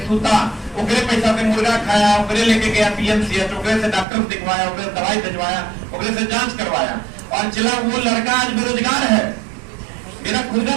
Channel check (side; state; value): left; drops out; at 4.0 s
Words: सूता, ओकरे पैसा से मुर्गा खाया, ओकरे लेके गया PMCH, ओकरे से डॉक्टर दिखवाया, ओकरे दवाई भिजवाया, ओकरे से जांच करवाया। और चला वो लड़का आज बेरोजगार है। मेरा खुद का